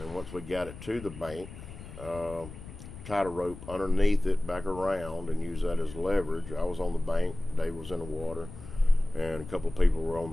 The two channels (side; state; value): left; noise; rumble, 14 dB below the sound